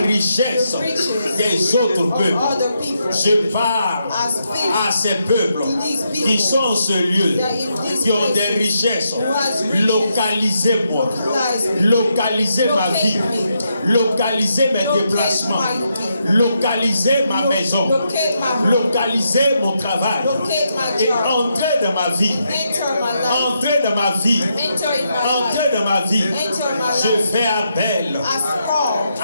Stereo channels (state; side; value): inverted; both; correlation -0.81